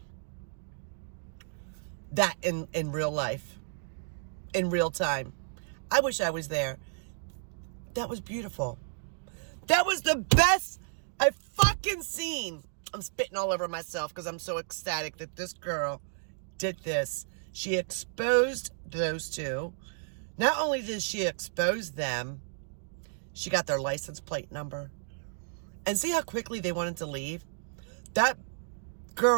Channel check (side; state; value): left; silent; digital silence